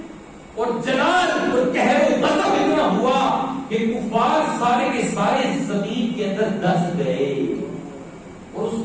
اور جلال اور قہر و غضب اتنا ہوا کہ کفار سارے کے سارے زمین کے اندر دس گئے اور اس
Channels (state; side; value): identical; both; correlation 1.00